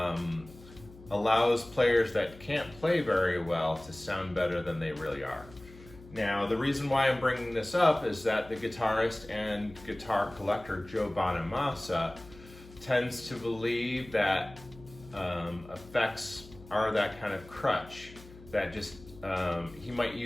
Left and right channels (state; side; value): noise; left; hum, 20 dB below the sound